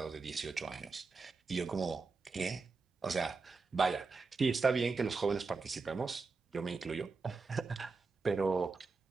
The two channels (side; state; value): left; quieter; 4.3 dB